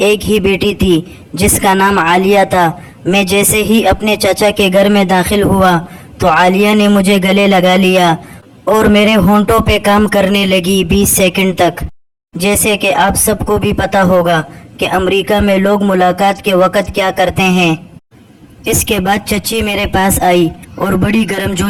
ایک ہی بیٹی تھی جس کا نام عالیہ تھا۔ میں جیسے ہی اپنے چچا کے گھر میں داخل ہوا تو عالیہ نے مجھے گلے لگا لیا اور میرے ہونٹوں پہ کام کرنے لگی 20 سیکنڈ تک۔ جیسے کہ آپ سب کو بھی پتہ ہوگا کہ امریکہ میں لوگ ملاقات کے وقت کیا کرتے ہیں۔ اس کے بعد چچی میرے پاس آئی اور بڑی گرم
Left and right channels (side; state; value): both; identical; correlation 1.00